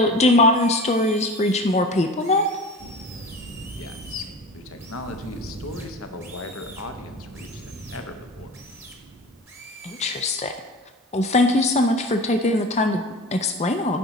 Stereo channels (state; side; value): normal; both; correlation 0.34